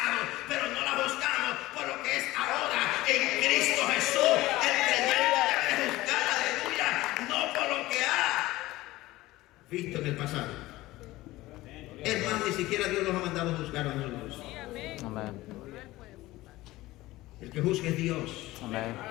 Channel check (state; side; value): quieter; right; 18.0 dB